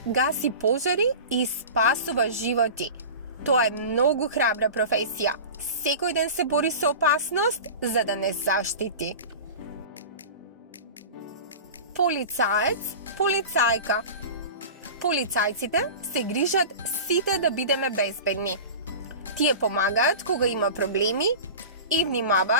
гаси пожари и спасува животи. Тоа е многу храбра професија. Секој ден се бори со опасност за да не заштити. Полицаец, полицајка. Полицајците се грижат сите да бидеме безбедни. Тие помагаат кога има проблеми и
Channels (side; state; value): both; inverted; correlation -0.33